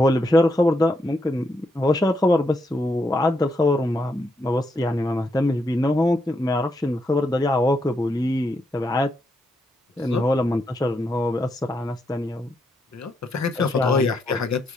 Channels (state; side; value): normal; both; correlation 0.80